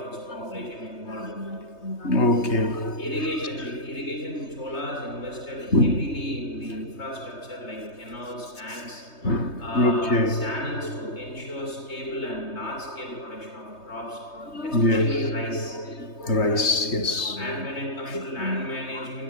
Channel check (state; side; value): late; right; 3.2 ms